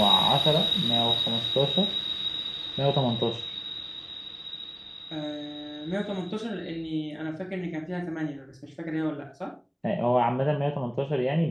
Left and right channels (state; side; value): identical; both; correlation 1.00